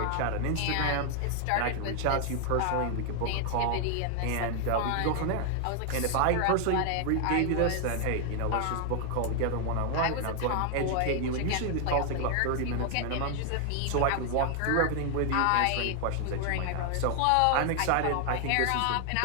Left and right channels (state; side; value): different; both; correlation 0.00